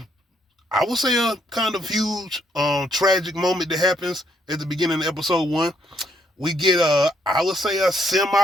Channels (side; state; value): both; normal; correlation 0.72